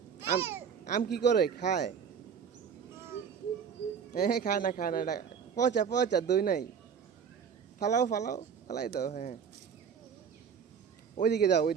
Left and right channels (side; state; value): left; quieter; 7.0 dB